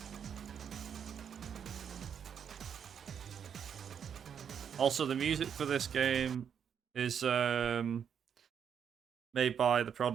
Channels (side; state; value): left; quieter; 7.8 dB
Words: Also, the music for this game is made by The